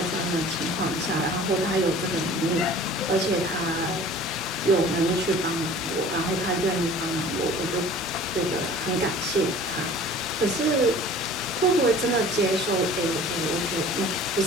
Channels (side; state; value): both; normal; correlation 0.46